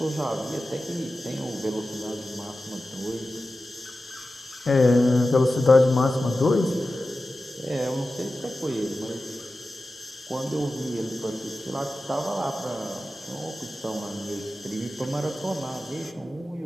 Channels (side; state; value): both; normal; correlation 0.94